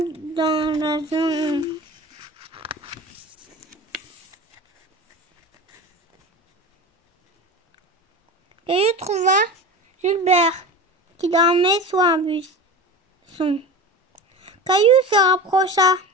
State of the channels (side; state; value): both; normal; correlation 0.30